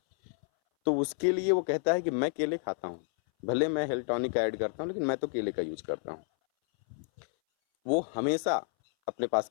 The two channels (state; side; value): silent; right; 58 dB below the other